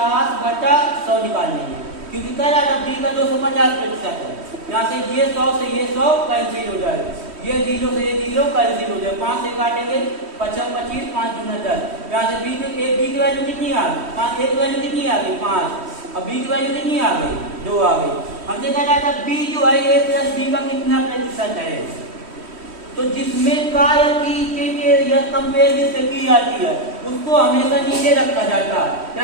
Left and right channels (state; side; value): late; left; 3.1 ms